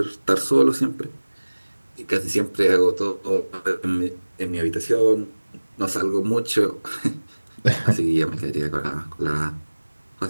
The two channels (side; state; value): both; inverted; correlation -1.00